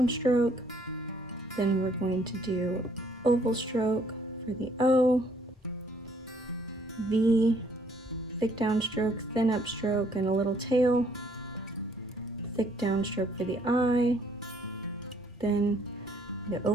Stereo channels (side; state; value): both; normal; correlation 0.64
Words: Then we're going to do oval stroke for the O, V, thick downstroke, thin upstroke, and a little tail. Thick downstroke for the I, then the